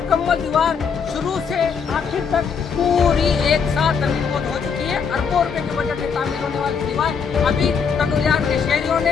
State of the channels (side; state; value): right; quieter; 6.3 dB